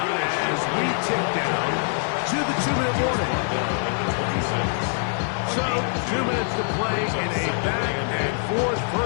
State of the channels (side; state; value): right; silent; 61 dB below the other